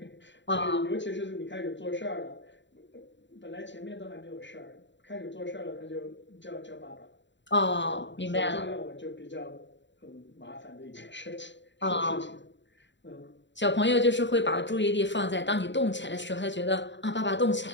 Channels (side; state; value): right; late; 0.53 ms